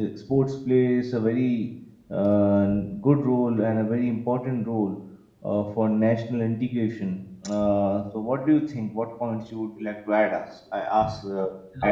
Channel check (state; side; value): identical; both; correlation 1.00